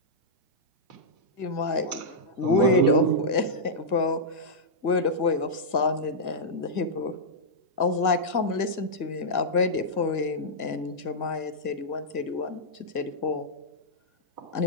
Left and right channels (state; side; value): late; right; 1.7 ms